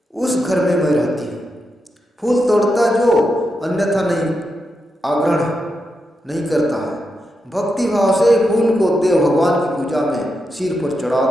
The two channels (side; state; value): both; normal; correlation 0.86